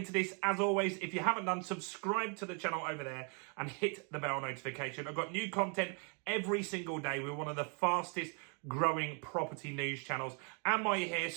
this, as always, if you haven't done, subscribe to the channel over there and hit the bell notification. I've got new content every single day. We're one of the fastest growing property news channels. And while you're here,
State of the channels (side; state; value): left; quieter; 37.7 dB